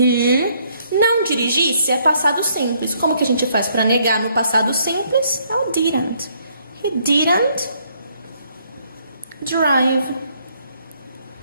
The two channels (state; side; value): inverted; both; correlation -0.68